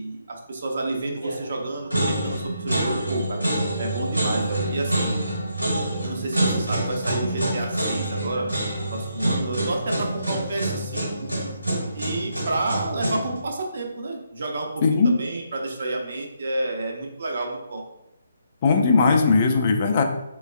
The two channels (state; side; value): inverted; both; correlation -0.76